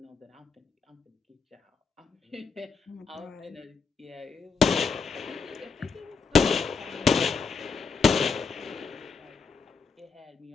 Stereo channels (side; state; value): right; quieter; 5.0 dB